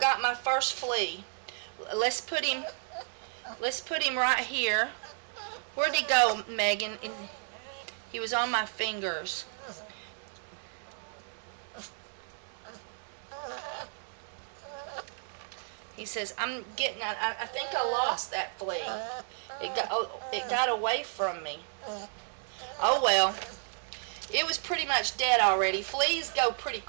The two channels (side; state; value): left; silent; 56 dB below the other